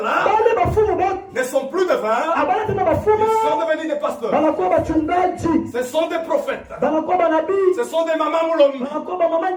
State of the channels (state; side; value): identical; both; correlation 1.00